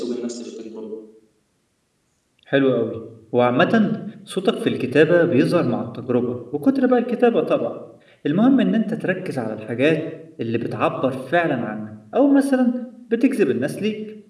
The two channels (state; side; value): identical; both; correlation 1.00